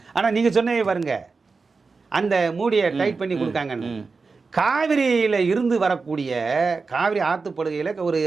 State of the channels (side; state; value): left; quieter; 4.4 dB